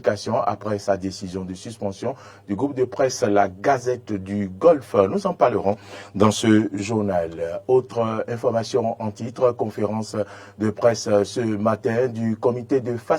après sa décision de suspension du groupe de presse La Gazette du Golfe. Nous en parlerons dans ce journal. Autre information en titre, conférence de presse ce matin du comité de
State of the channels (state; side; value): identical; both; correlation 1.00